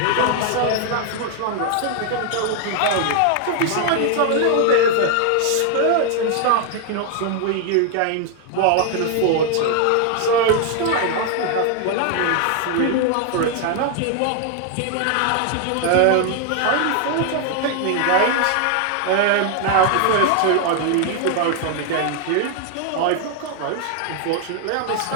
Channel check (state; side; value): different; both; correlation 0.00